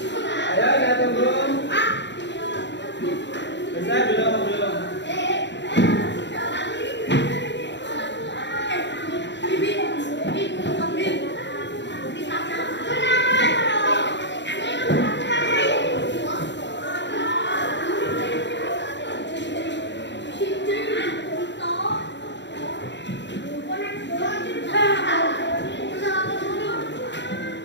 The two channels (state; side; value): late; right; 0.52 ms